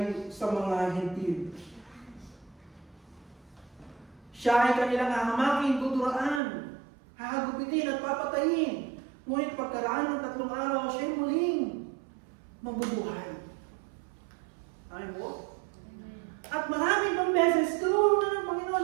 sa mga hentil. Siya ay kanilang hahamaking, tuturaan, hahagupitin at papatayin. Ngunit pagkaraan ng 3 araw, siya'y muling mabubuhay. Amen po? At maraming pang beses, tinuro na ng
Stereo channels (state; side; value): drops out; left; at 6.4 s